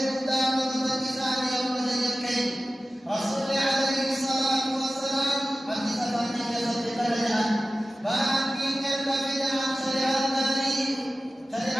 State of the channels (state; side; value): normal; both; correlation 0.95